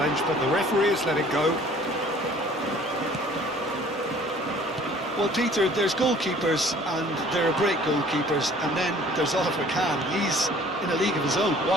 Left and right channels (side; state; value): both; normal; correlation 0.52